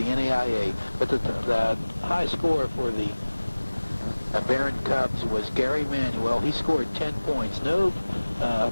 NAIA. But the high score for the Behrend Cubs was Gary Manuel. He scored 10 points, no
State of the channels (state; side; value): inverted; both; correlation -1.00